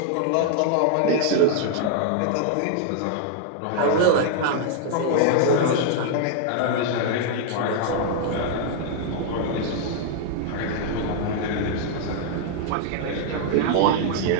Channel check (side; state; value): both; different; correlation 0.00